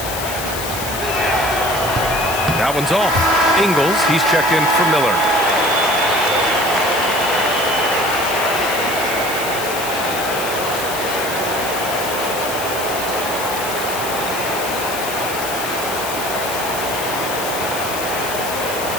That one's off. Ingles, he's checked in for Miller.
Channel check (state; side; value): noise; left; hiss, 7 dB below the sound